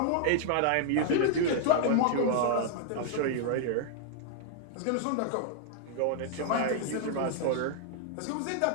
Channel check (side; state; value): both; different; correlation 0.00